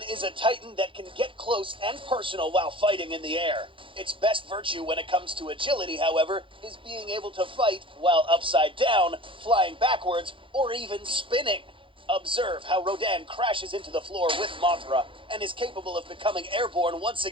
is a titan that can get close and personal while fighting in the air. Its best virtue when it comes to agility, however, is being able to fight while upside down, flying backwards, or even spinning. Observe how Rodan crashes into the floor with Mothra and is capable of becoming airborne once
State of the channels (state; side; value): late; left; 0.25 ms